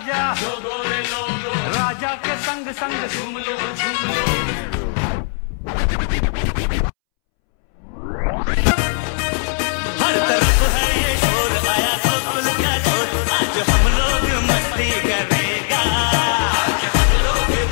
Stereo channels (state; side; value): silent; right; 67 dB below the other